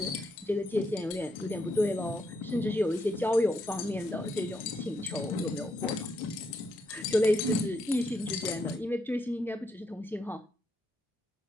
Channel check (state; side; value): normal; both; correlation 0.79